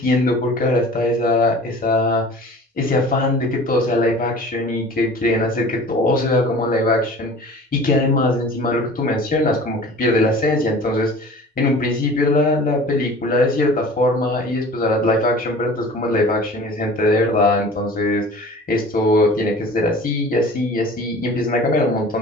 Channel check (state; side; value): normal; both; correlation 0.43